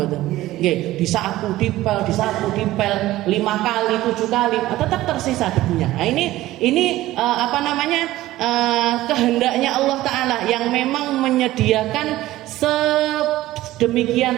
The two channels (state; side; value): quieter; left; 16.0 dB